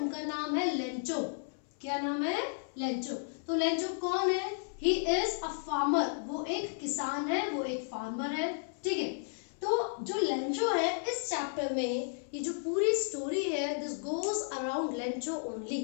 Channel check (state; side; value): silent; right; 56 dB below the other